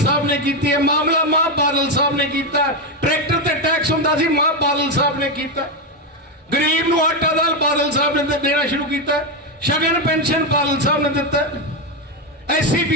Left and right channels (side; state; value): both; normal; correlation 0.08